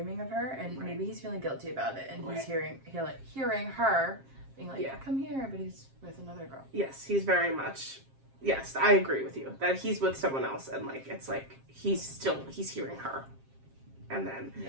of her, and maybe he's feeling guilty about it, and he's hearing her being like, come here, but he's with another girl. Yes, he's very much, yes, I agree with you, that he's with someone else, and, like, it's like, he's hearing her. And then,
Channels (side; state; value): left; late; 7.5 ms